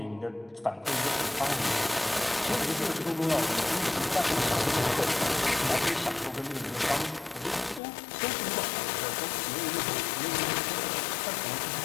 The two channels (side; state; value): right; drops out; at 7.8 s